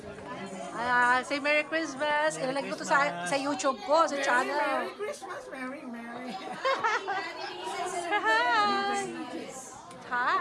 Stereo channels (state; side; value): identical; both; correlation 1.00